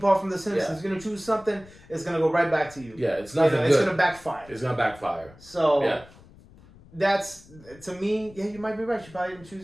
from The Simpsons. You're going to choose something, it's going to go right back to you. Yeah, it's nothing good. It's going to backfire. It's going to backfire. So, that's, to me, you might be right. She probably didn't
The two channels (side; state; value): left; noise; rumble, 23 dB below the sound